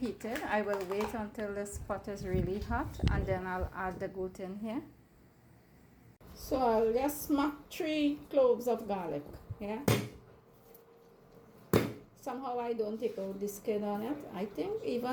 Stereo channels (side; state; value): both; identical; correlation 1.00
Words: I will wait until this pot is really hot and then I'll add the goat in here. So I'll just smack 3 cloves of garlic. Yeah. Somehow I don't take out the skin on it. I think